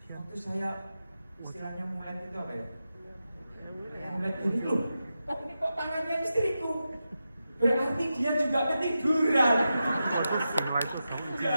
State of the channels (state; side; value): inverted; both; correlation -0.90